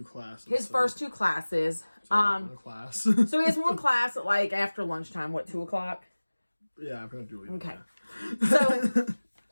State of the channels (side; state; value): both; inverted; correlation -1.00